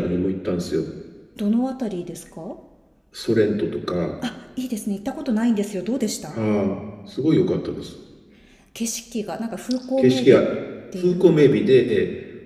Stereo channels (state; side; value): identical; both; correlation 1.00